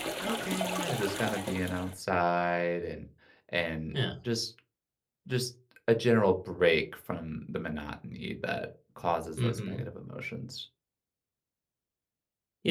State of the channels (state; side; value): identical; both; correlation 1.00